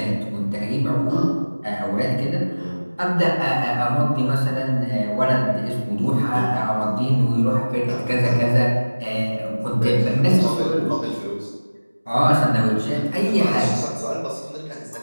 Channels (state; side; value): inverted; both; correlation -1.00